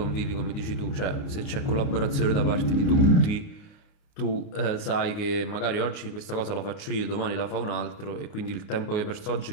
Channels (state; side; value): late; right; 29 ms